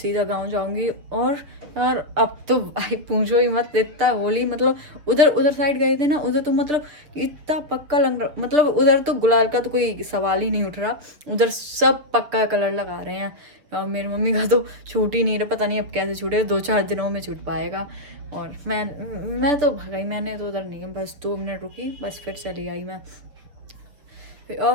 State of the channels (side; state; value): left; late; 6.6 ms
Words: गाँव जाऊंगी। और यार अब तो भाई पूछो ही मत, इतना होली मतलब उधर साइड गए थे ना, उधर तो मतलब इतना पक्का लग रहा, मतलब उधर तो गुलाल का तो कोई सवाल ही नहीं उठ रहा, उधर सब पक्का कलर लगा रहे हैं। और मेरी मम्मी का तो छूट ही नहीं रहा, पता नहीं अब कैसे छूटे, 2-4 दिनों में छूट पाएगा। और मैं तो भगाई, मैंने तो उधर नहीं, बस 2 मिनट रुकी, बस फिर चली आई मैं। फिर